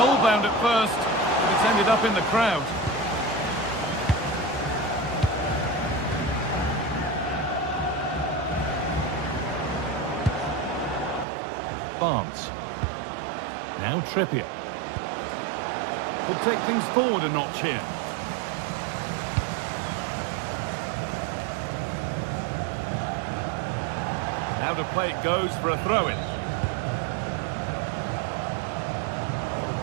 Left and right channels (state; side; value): drops out; left; at 11.2 s